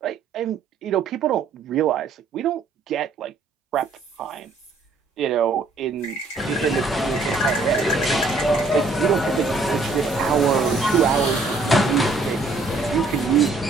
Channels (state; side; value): quieter; left; 3.6 dB